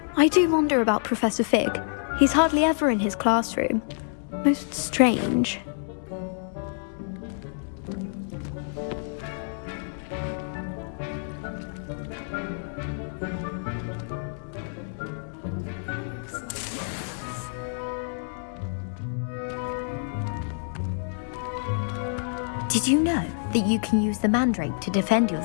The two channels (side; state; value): right; silent; digital silence